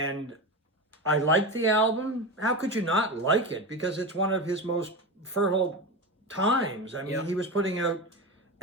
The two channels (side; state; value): both; normal; correlation 0.22